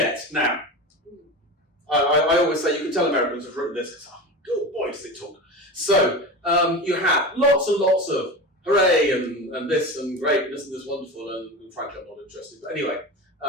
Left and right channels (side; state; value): both; normal; correlation 0.27